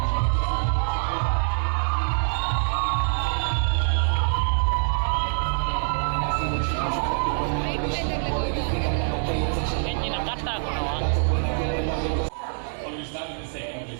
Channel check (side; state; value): left; silent; 62 dB below the other